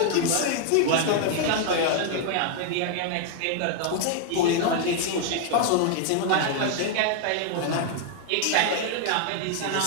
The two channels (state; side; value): different; both; correlation 0.00